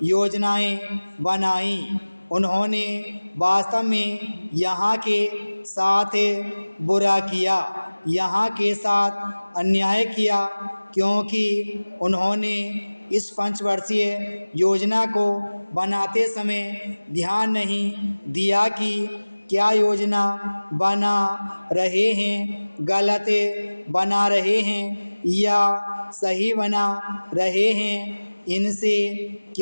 योजनाएं बनाई, उन्होंने वास्तव में यहाँ के साथ बुरा किया, यहाँ के साथ अन्याय किया, क्योंकि उन्होंने इस पंचवर्षीय योजना को बनाते समय ध्यान नहीं दिया कि क्या योजना बना रहे हैं गलत बना रहे हैं या सही बना रहे हैं, इनसे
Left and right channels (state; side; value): inverted; both; correlation -1.00